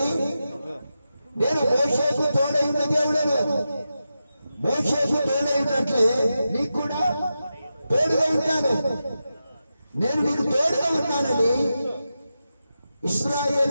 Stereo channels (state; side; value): inverted; both; correlation -0.90